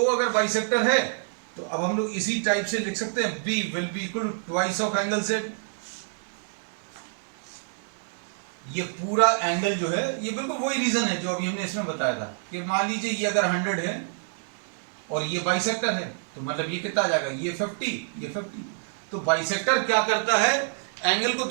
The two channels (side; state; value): left; silent; digital silence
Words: अगर बाइसेक्टर है तो अब हम लोग इसी टाइप से लिख सकते हैं, B will be equal to twice of angle Z। ये पूरा एंगल जो है, ये बिल्कुल वही रीजन है जो अभी हमने इसमें बताया था कि मान लीजिए ये अगर 100 है और ये बाइसेक्टर है, तो मतलब ये कितना आ जाएगा? ये 50, ये 50। तो बाइसेक्टर क्या करता है? एंगल को